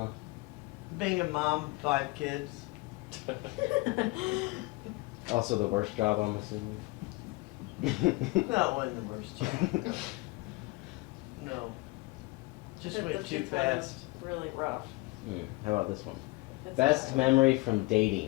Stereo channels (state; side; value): quieter; right; 23.4 dB